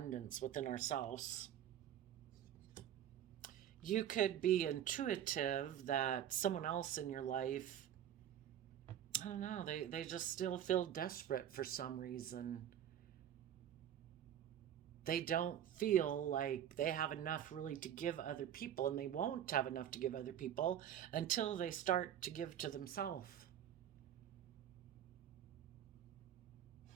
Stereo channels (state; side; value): quieter; left; 10.4 dB